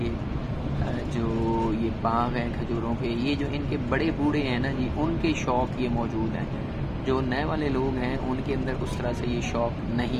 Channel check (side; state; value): both; identical; correlation 1.00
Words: जो ये बाग हैं खजूरों के, ये जो इनके बड़े बूढ़े हैं ना जी, उनके शौक़ ये मौजूद हैं। जो नए वाले लोग हैं उनके अंदर उस तरह से ये शौक़